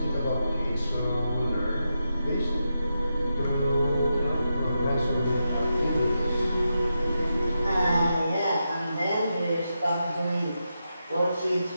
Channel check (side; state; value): both; inverted; correlation -0.87